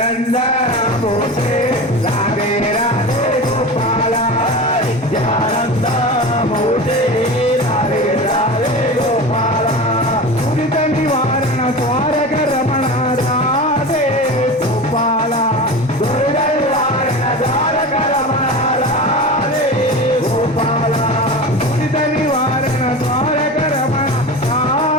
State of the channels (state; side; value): normal; both; correlation 0.29